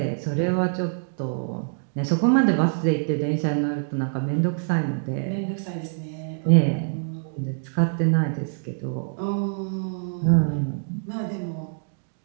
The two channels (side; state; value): left; silent; digital silence